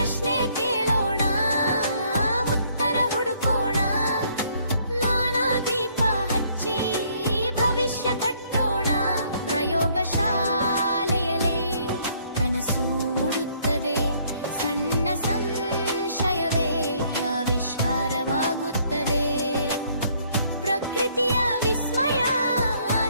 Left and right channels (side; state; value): both; inverted; correlation -0.65